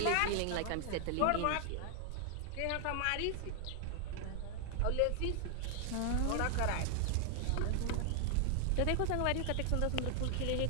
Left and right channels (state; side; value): different; both; correlation 0.00